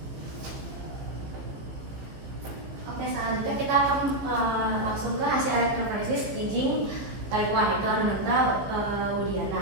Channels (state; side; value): late; left; 15 ms